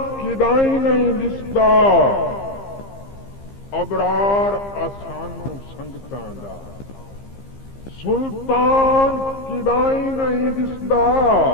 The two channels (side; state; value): right; late; 15 ms